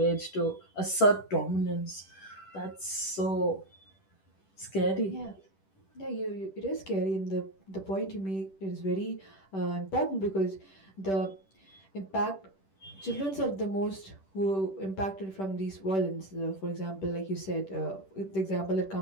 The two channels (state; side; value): late; right; 10 ms